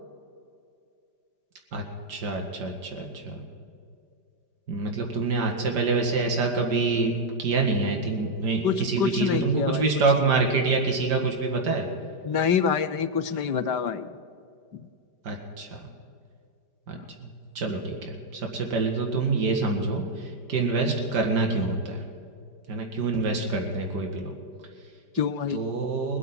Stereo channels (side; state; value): left; late; 5.0 ms